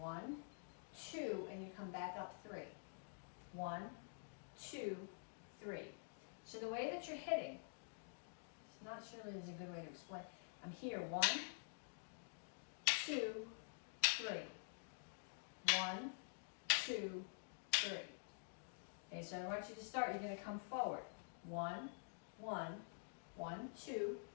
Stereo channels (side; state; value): right; silent; digital silence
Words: 2, and you come back up 3. 1, 2, 3. So the way that you're hitting, it's not surely is a good way to explain. I'm here, 1, 2, 3. 1, 2, 3. Okay, so I want you to start. You're going to come forward. 1, 1, 1, 2,